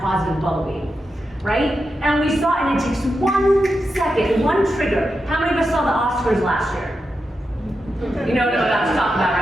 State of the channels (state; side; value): normal; both; correlation 0.88